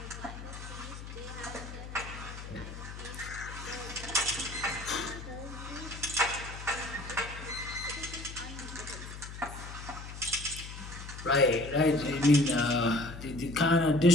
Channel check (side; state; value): left; noise; hum, 11 dB below the sound